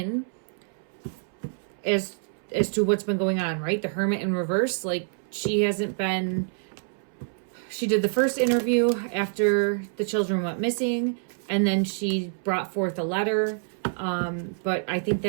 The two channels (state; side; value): silent; left; 60 dB below the other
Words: as to what's been going on, right? The Hermit in reverse, like she hasn't been... She did the first interview after the children went missing, and then she brought forth a letter. But I think